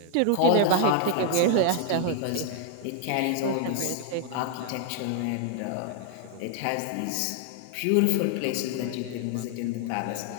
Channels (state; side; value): different; both; correlation 0.00